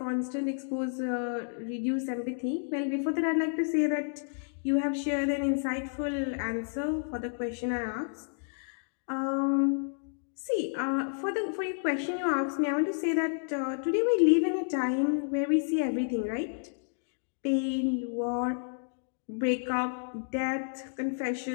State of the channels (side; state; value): right; silent; digital silence